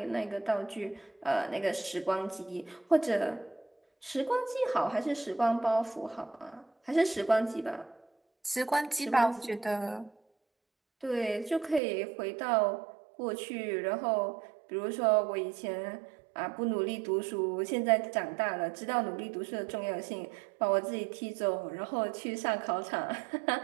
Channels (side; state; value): left; drops out; at 11.8 s